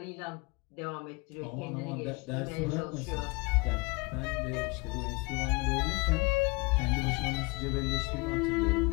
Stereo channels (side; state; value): right; quieter; 27.2 dB